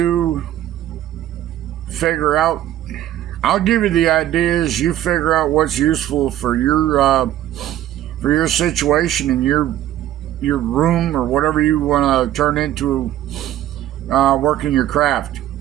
figure out, I'll give you the ideas, you figure out what's useful for your situation and your room or whatever you want to turn into working your craft.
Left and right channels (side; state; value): left; quieter; 12.8 dB